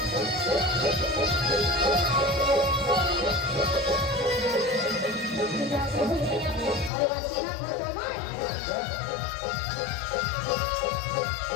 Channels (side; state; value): right; drops out; at 6.9 s